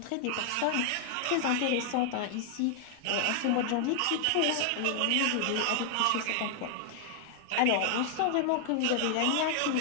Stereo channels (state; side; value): different; both; correlation 0.00